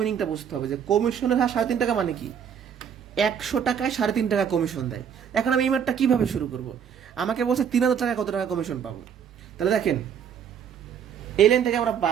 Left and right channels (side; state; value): left; quieter; 8.0 dB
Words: বুঝতে হবে যে কমিশনের হার 3.5 টাকা মানে কি। 100 টাকায় 3.5 টাকা কমিশন দেয়। এখন আমি এই ম্যাথটা কিভাবে শুরু করব? আমাকে বলছে 3000 টাকায় কত টাকা কমিশন পাবো। তাহলে দেখেন, এই লাইন থেকে আমরা